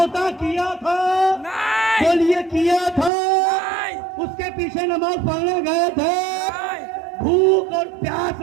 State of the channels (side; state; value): left; drops out; at 3.1 s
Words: کیا تھا؟ بولیے کیا تھا؟ اس کے پیچھے نماز پڑھنے گئے تھے، بھوک اور پیاس